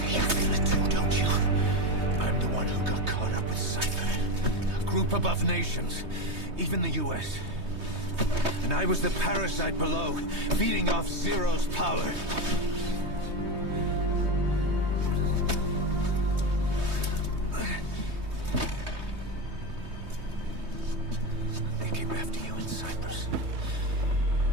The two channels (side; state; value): left; late; 3.2 ms